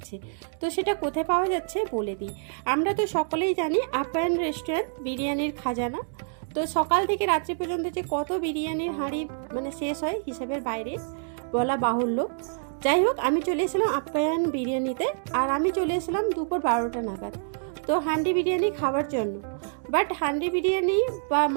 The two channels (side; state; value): left; silent; digital silence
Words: তো সেটা কোথায় পাওয়া যাচ্ছে বলে দিই। আমরা তো সকলেই জানি আপ্যায়ন রেস্টুরেন্ট বিরিয়ানির খাজানা। তো সকাল থেকে রাত্রি পর্যন্ত যে কত বিরিয়ানির হাঁড়ি মানে শেষ হয় হিসাবের বাইরে বলা বাহুল্য। যাই হোক, আমি চলে এসেছিলাম আপ্যায়ন বিরিয়ানিতে, আর আমি চলে এসেছিলাম দুপুর 12টা নাগাদ তো হান্ডি বিরিয়ানি খাওয়ার জন্য। বাট হান্ডি বিরিয়ানি বা